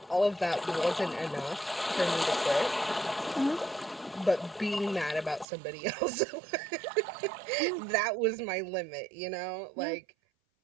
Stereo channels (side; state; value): left; drops out; at 5.5 s